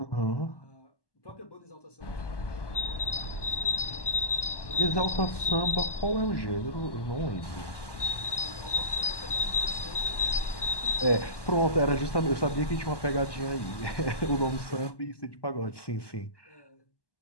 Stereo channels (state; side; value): late; right; 1.1 ms